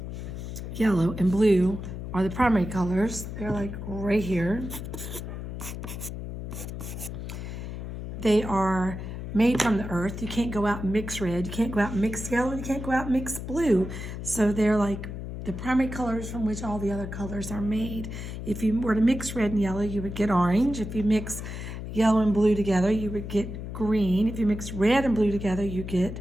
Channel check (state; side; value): noise; left; hum, 7 dB below the sound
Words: yellow, and blue are the primary colors. They're right here. They are made from the earth. You can't go out and mix red. You can't go out and mix yellow. You can't go out and mix blue. So they're like the primary colors from which all the other colors are made. If you were to mix red and yellow, you would get orange. If you mix yellow and blue together, you would get green. If you mix red and blue together, you get